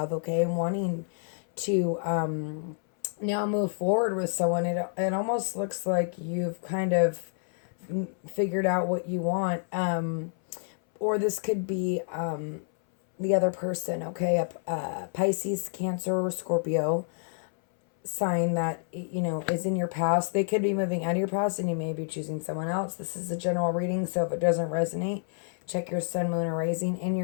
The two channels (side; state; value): right; silent; 59 dB below the other